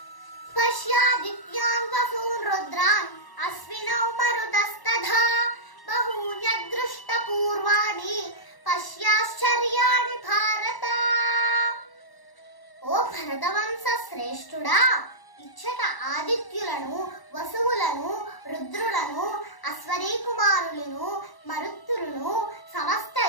పశ్యాదిత్యాన్ వసూన్ రుద్రాన్ అశ్వినౌ మరుతస్తథా బహూన్యదృష్ట పూర్వాణి పశ్యాశ్చర్యాణి భారత. ఓ భరతవంశ శ్రేష్ఠుడా, ఇచ్చట ఆదిత్యులను వసువులను రుద్రులను అశ్వనీ కుమారులను మరుత్తులను సమస్త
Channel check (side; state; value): right; late; 1.1 ms